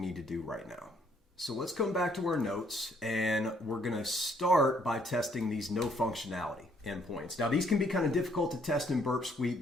to do right now. So let's come back to our notes, and we're going to start by testing these no functionality endpoints. Now, these can be kind of difficult to test in Burp Suite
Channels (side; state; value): both; normal; correlation 0.67